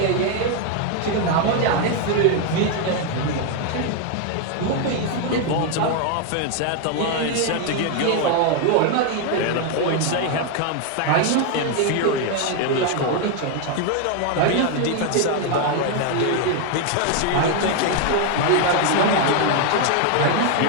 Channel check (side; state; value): both; different; correlation 0.01